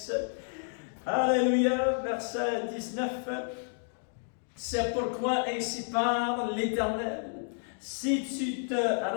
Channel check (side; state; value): right; silent; digital silence